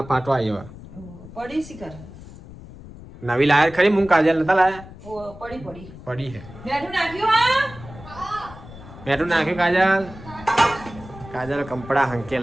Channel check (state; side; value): noise; left; rumble, 17 dB below the sound